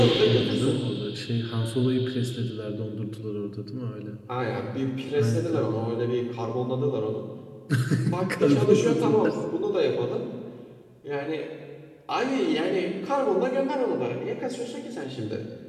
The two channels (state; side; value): identical; both; correlation 1.00